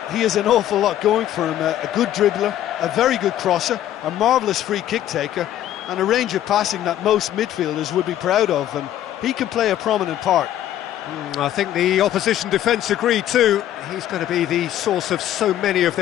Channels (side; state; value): right; quieter; 12.1 dB